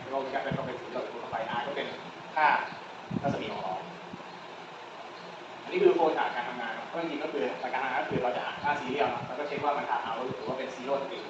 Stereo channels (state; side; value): identical; both; correlation 1.00